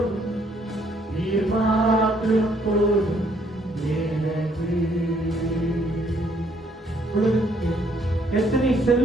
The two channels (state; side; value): normal; both; correlation 0.67